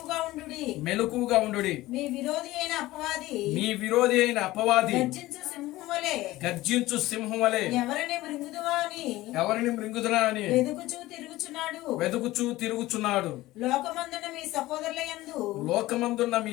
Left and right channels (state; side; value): quieter; right; 17.6 dB